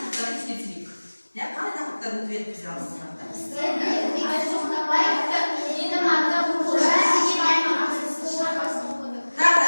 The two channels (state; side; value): inverted; both; correlation -1.00